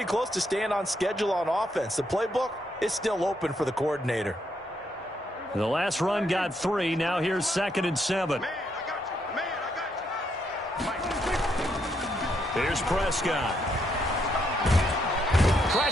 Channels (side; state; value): both; normal; correlation 0.76